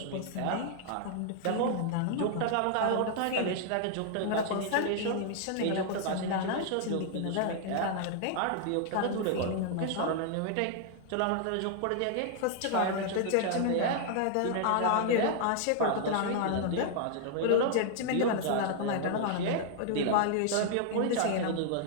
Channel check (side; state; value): both; different; correlation -0.01